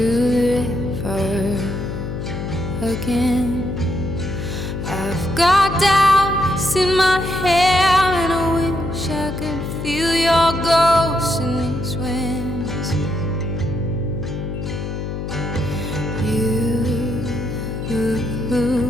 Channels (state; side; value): noise; left; hum, 5 dB below the sound